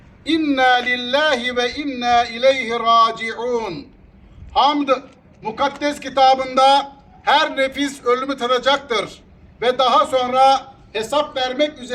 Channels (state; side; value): identical; both; correlation 1.00